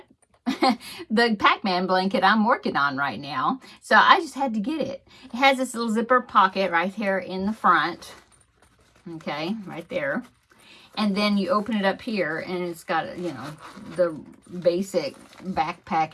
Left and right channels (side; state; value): both; identical; correlation 1.00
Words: the Pac-Man blanket I'm working on right now. So I just had to get it. It has this little zipper pocket right here in the front. Okay, right there. And then you open it up here and it's got, you know, the basic